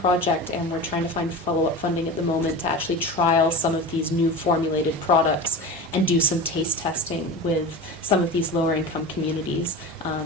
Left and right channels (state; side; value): normal; both; correlation 0.30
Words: and we're trying to find follow-up funding at the moment to actually trial some of these new formulated products and do some taste testing with some of these lower income communities